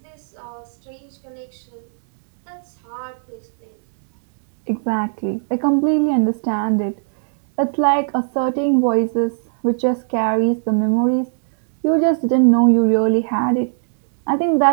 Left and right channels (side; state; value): left; silent; 67 dB below the other